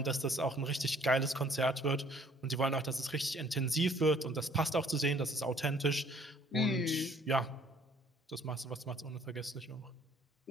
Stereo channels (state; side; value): normal; both; correlation 0.58